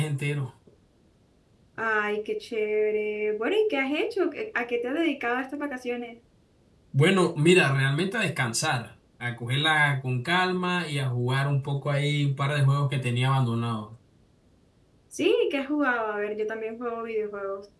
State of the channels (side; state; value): both; identical; correlation 1.00